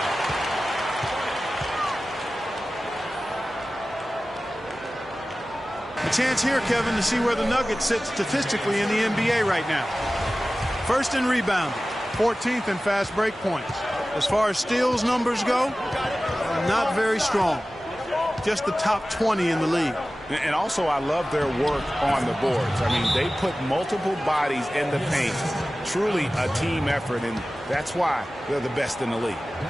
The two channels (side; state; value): both; normal; correlation 0.96